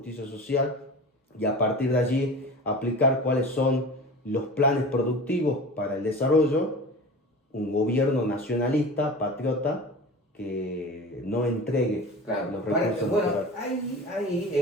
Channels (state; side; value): normal; both; correlation 0.34